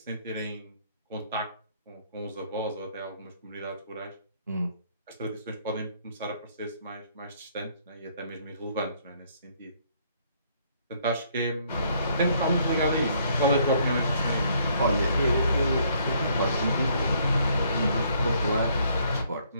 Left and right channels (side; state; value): both; inverted; correlation -0.66